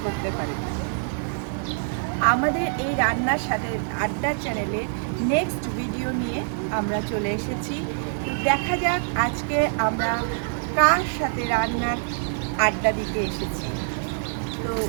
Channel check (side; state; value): left; silent; 62 dB below the other